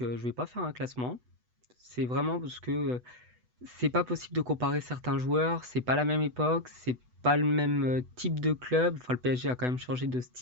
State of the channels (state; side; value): late; left; 8.1 ms